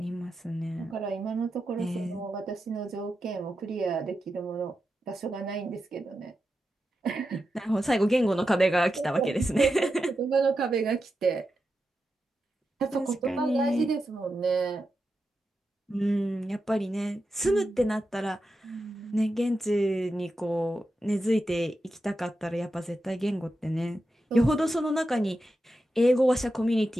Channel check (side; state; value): both; normal; correlation 0.89